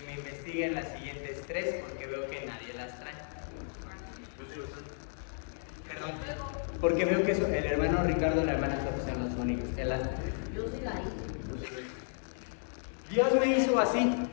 me investiguen las siguientes 3 porque veo que nadie las trae. Perdón, porque veo que el hermano Ricardo y la hermana Sofía son los únicos que las traen. Yo sí la hice. Dios me hizo así.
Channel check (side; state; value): right; silent; 55 dB below the other